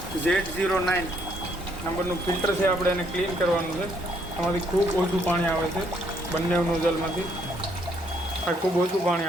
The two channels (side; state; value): both; normal; correlation 0.69